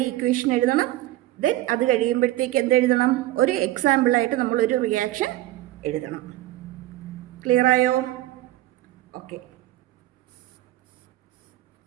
ഇക്വേഷൻ എഴുതണം. ദെൻ അത് കഴിയുമ്പോഴത്തേക്ക് എന്തെഴുതണം, ഒരു എക്സാമ്പിളായിട്ട് നമ്മളൊരു റിയാക്ഷൻ എഴുതണം. ക്ലിയർ ആയോ? ഓക്കെ.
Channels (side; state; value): left; quieter; 15.7 dB